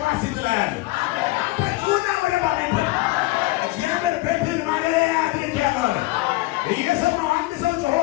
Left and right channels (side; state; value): right; quieter; 19.5 dB